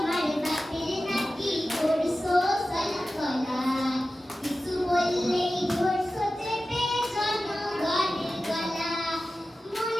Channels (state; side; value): normal; both; correlation 0.94